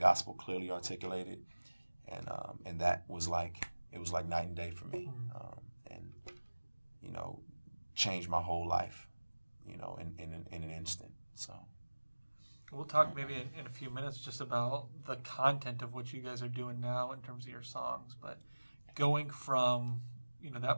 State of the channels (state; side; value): inverted; both; correlation -1.00